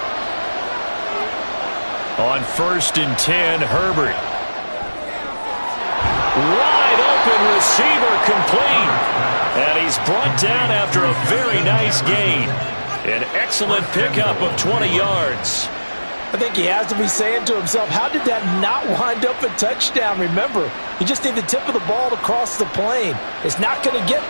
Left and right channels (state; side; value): inverted; both; correlation -1.00